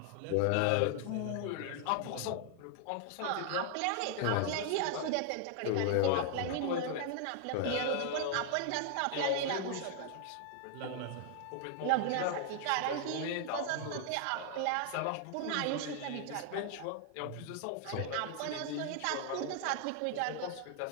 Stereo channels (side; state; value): both; different; correlation 0.00